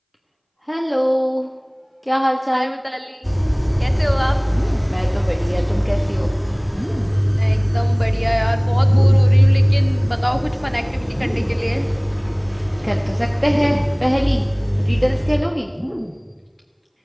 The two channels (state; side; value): identical; both; correlation 1.00